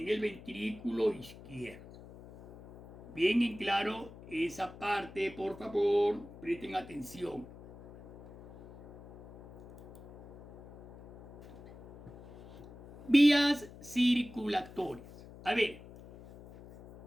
el ventrículo izquierdo. Bien en claro esa parte, por favor, presten atención. Vías circulatorias. A ver,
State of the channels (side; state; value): left; noise; hum, 17 dB below the sound